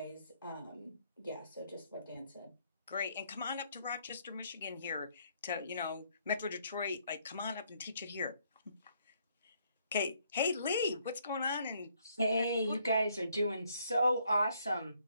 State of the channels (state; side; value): inverted; both; correlation -0.69